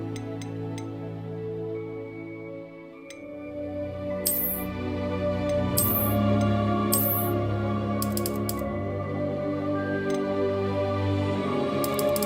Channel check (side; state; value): both; identical; correlation 1.00